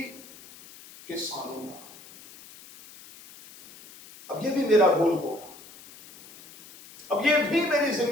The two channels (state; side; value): noise; left; hiss, 20 dB below the sound